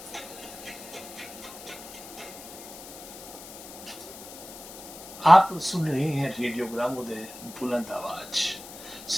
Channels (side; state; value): left; noise; hiss, 14 dB below the sound